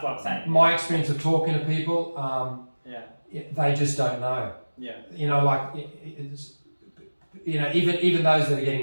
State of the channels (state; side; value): inverted; both; correlation -1.00